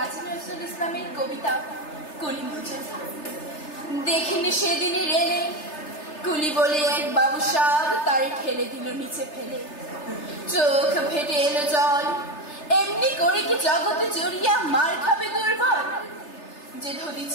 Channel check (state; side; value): late; right; 3.3 ms